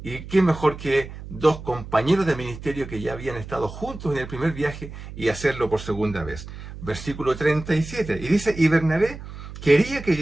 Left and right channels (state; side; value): noise; right; hum, 12 dB below the sound